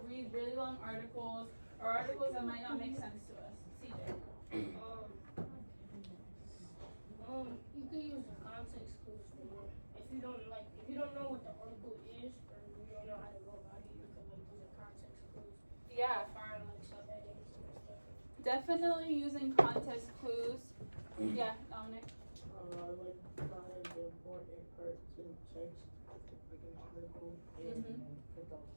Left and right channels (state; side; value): inverted; both; correlation -1.00